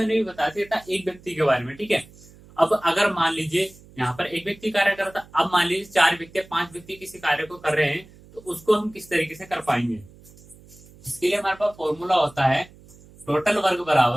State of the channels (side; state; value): right; noise; hum, 24 dB below the sound